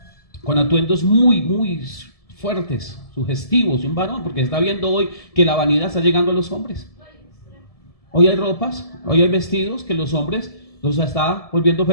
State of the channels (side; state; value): right; late; 1.7 ms